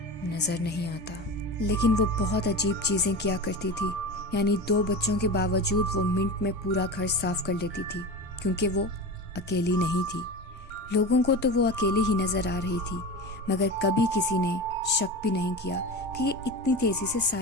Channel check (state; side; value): normal; both; correlation 0.28